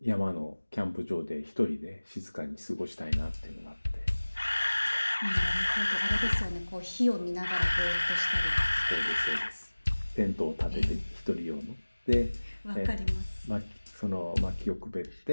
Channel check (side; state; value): both; inverted; correlation -1.00